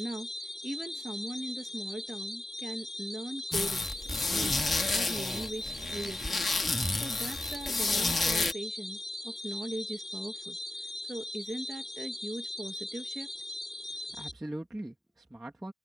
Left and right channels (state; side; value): normal; both; correlation 0.90